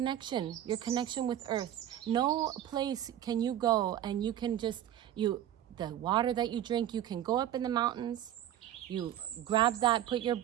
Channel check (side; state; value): left; quieter; 11.6 dB